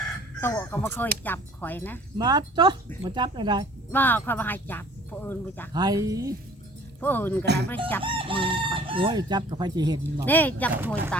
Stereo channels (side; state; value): both; normal; correlation 0.51